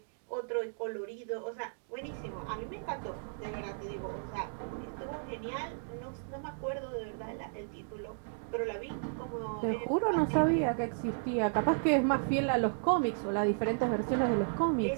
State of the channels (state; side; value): silent; left; digital silence